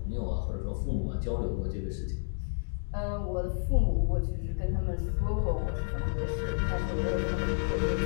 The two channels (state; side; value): silent; right; digital silence